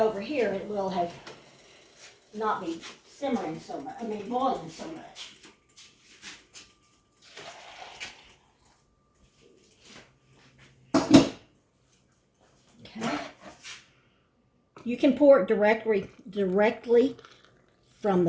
here, it will have not be simmering so much. I mean, boiling so much. Okay. You can pour it directly from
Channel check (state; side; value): identical; both; correlation 1.00